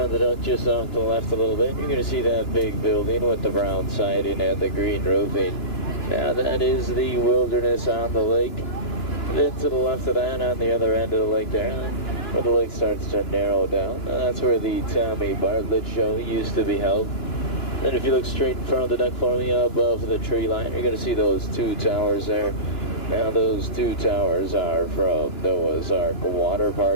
of the duck, just off to the left a little bit, you're going to see that big building with the brown siding and the green roofing. Now that is the Wilderness on the lake. Then to the left of that, on the other end of the lake there, where the lake starts to narrow down, that's where the Tommy Bartlett show used to be held. Then if you look straight in front of the duck for me, above the tree line, you're going to see those two towers there. Now those two towers are from Noah's Ark Water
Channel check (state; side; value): late; right; 2.9 ms